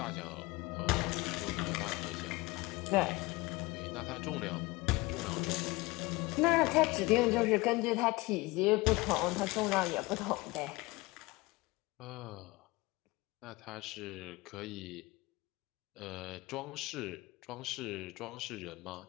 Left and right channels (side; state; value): right; quieter; 22.5 dB